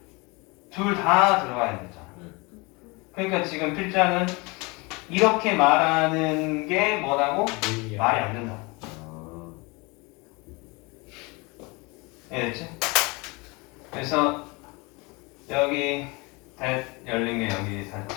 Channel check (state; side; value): quieter; right; 27.0 dB